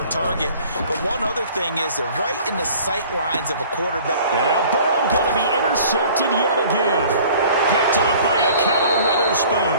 target. But one other thing is they're right in the sight lines of a quarterback. And now Burrow going to be intercepted yet again. Picked off by Akello Witherspoon.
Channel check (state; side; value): inverted; both; correlation -0.50